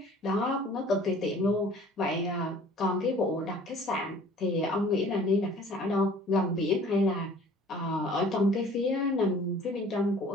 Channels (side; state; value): both; normal; correlation 0.50